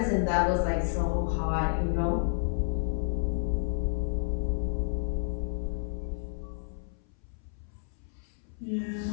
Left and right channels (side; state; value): right; silent; 57 dB below the other